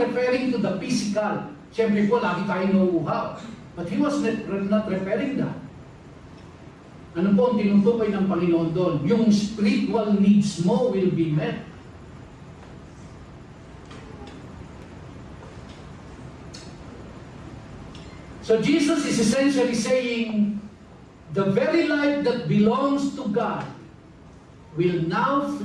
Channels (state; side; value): identical; both; correlation 1.00